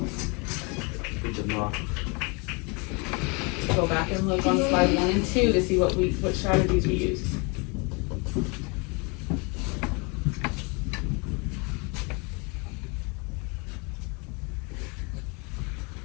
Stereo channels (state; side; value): quieter; right; 30.7 dB